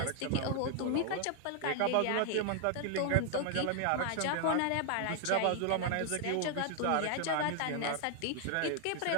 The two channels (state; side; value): different; both; correlation 0.00